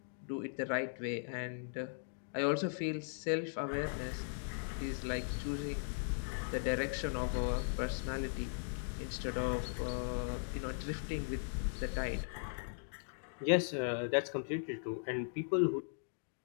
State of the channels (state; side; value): silent; right; digital silence